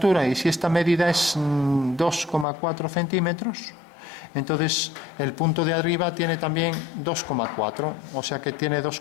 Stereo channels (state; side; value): drops out; right; at 2.5 s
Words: y si esta medida es 2,4 centímetros, entonces el punto de arriba tiene también 2,4, o sea que tiene dos